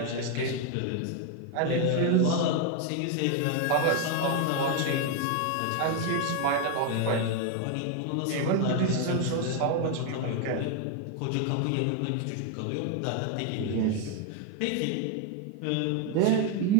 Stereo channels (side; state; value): both; different; correlation 0.01